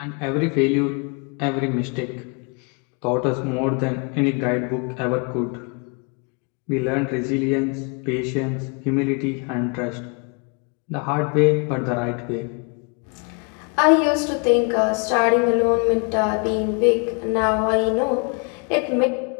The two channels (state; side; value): quieter; right; 34.4 dB